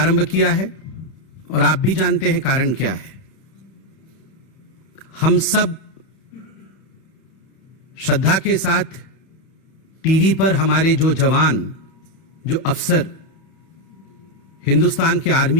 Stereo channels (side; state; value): right; late; 31 ms